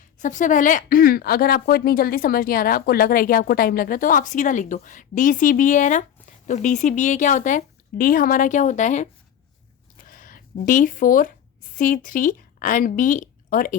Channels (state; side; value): quieter; right; 9.6 dB